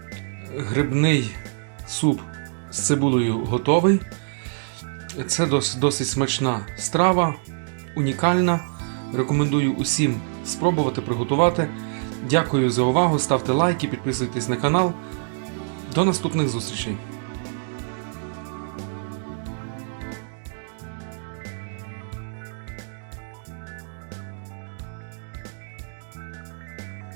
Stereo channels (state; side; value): silent; left; digital silence